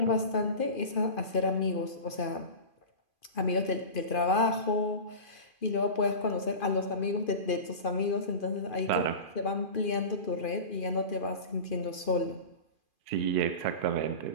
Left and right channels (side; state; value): right; late; 2.4 ms